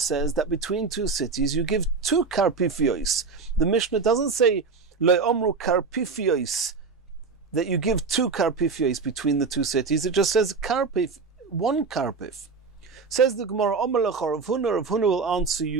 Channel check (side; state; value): left; quieter; 4.7 dB